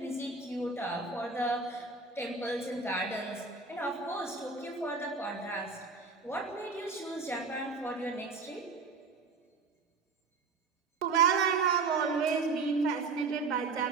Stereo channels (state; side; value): quieter; left; 4.4 dB